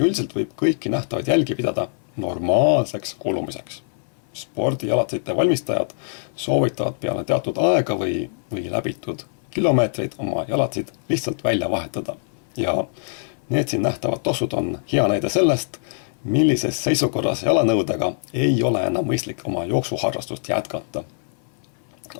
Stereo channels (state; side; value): silent; right; 58 dB below the other